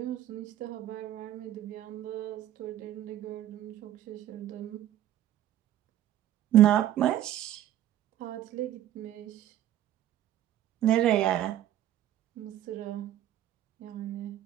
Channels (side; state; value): left; quieter; 12.5 dB